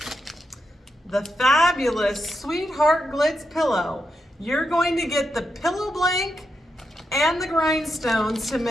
The fabulous Sweetheart Glitz pillow. You're going to get the pillow blank and the grindstones to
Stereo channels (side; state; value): both; normal; correlation 0.85